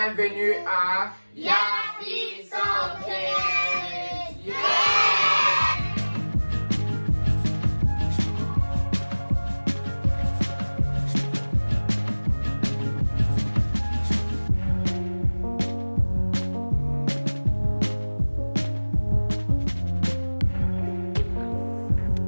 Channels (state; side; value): inverted; both; correlation -1.00